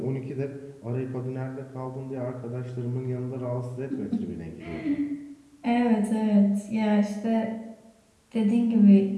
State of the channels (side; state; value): both; identical; correlation 1.00